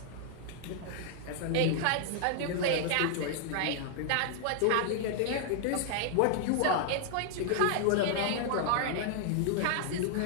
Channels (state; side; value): different; both; correlation 0.00